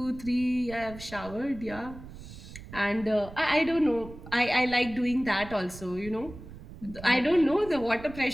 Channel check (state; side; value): noise; right; rumble, 15 dB below the sound